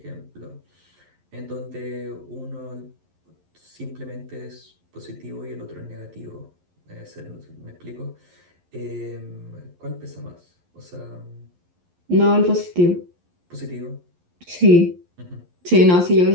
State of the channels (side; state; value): left; late; 11 ms